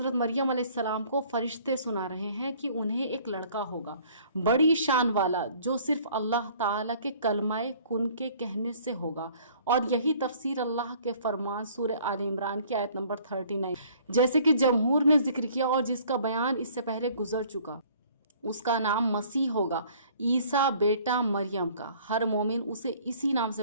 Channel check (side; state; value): both; inverted; correlation -0.55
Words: مریم علیہ السلام کو فرشتے سنا رہے ہیں کہ انہیں ایک لڑکا ہوگا، بڑی شان والا، جو صرف اللہ تعالیٰ کے کلمہ کن کے کہنے سے ہوگا۔ اور یہی تفسیر اللہ کے فرمان سورہ آل عمران کی آیت نمبر 39 جیسے کہ جمہور نے ذکر کیا اور جس کا بیان اس سے پہلے گزر چکا، اس کا نام مسیح ہوگا، عیسیٰ بیٹا مریم کا۔ ہر مومن اسے اسی نام